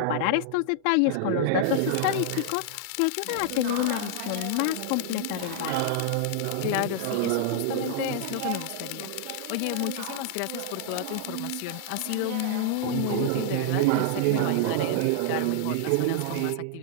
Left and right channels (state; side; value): different; both; correlation -0.01